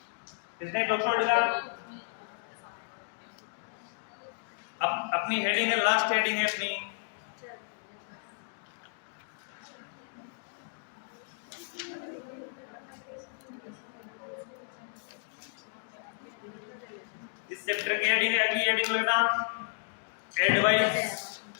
इसने डॉक्टर अपनी हेडिंग है, लास्ट हेडिंग है अपनी, इस चैप्टर की हेडिंग है, अगली हेडिंग लगना एडवाइस,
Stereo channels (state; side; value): silent; right; digital silence